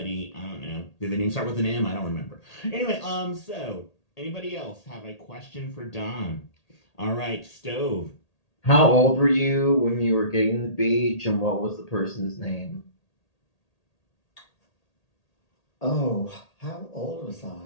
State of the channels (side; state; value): right; late; 1.8 ms